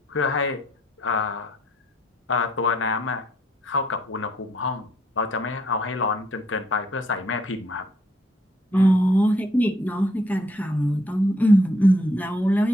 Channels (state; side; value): normal; both; correlation 0.69